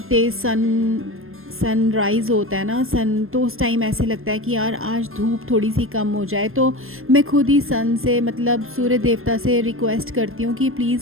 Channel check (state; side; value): late; left; 0.61 ms